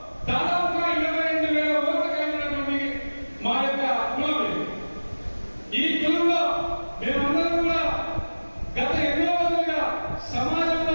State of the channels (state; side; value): inverted; both; correlation -1.00